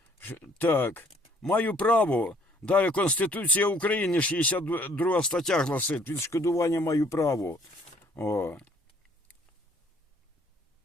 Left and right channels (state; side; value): normal; both; correlation 0.61